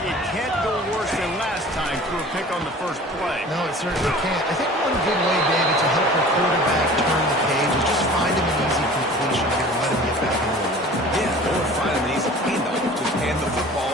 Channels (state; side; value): normal; both; correlation 0.44